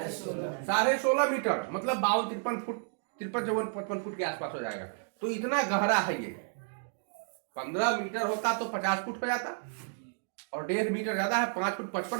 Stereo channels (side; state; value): left; silent; 57 dB below the other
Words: 16.5 मीटर, मतलब 52-53 फुट, 53-54-55 फुट के आसपास हो जाएगा। तो इतना गहरा है ये। 15 मीटर होता तो 50 फुट हो जाता, और 1.5 मीटर ज्यादा है, 5 फुट